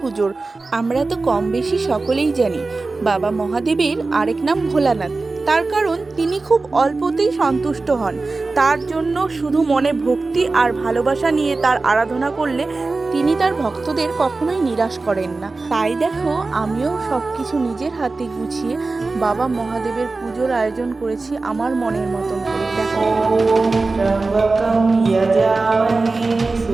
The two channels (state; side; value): quieter; left; 3.6 dB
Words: পুজোর। আমরা তো কম বেশি সকলেই জানি বাবা মহাদেবের আরেক নাম ভোলানাথ। তার কারণ তিনি খুব অল্পতেই সন্তুষ্ট হন। তার জন্য শুধু মনে ভক্তি আর ভালোবাসা নিয়ে তার আরাধনা করলে তিনি তার ভক্তদের কখনোই নিরাশ করেন না। তাই দেখো, আমিও সব কিছু নিজের হাতে গুছিয়ে বাবা মহাদেবের পুজোর আয়োজন করেছি আমার মনের মতন করে। দেখো, त्र्यम्बकं यजामहे